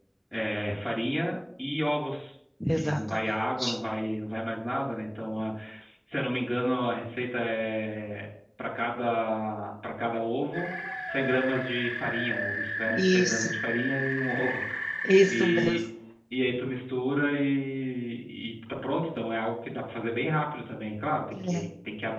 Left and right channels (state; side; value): identical; both; correlation 1.00